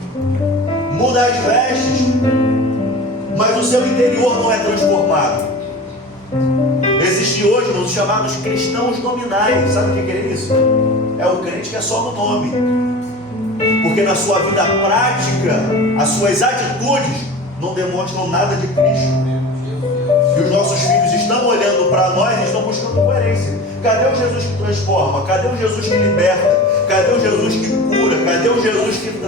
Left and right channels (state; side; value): normal; both; correlation 0.35